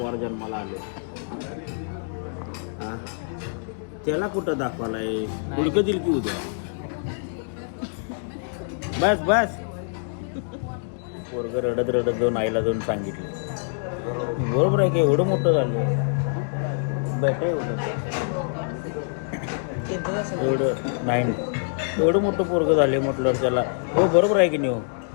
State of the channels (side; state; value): right; silent; digital silence